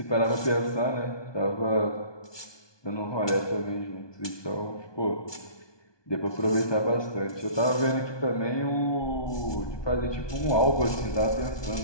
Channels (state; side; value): late; right; 1.2 ms